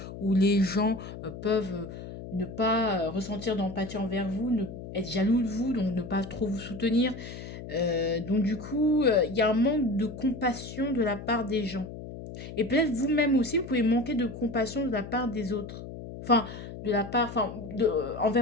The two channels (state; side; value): noise; left; hum, 11 dB below the sound